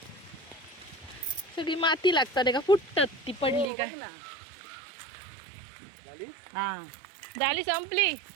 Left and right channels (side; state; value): left; drops out; at 3.7 s